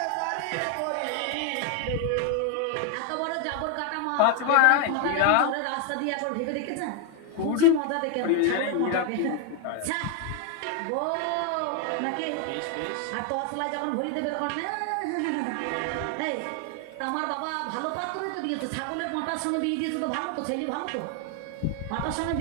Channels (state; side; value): different; both; correlation 0.00